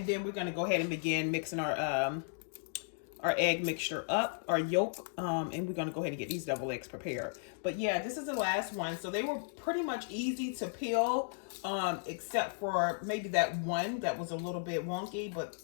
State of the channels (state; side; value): silent; right; digital silence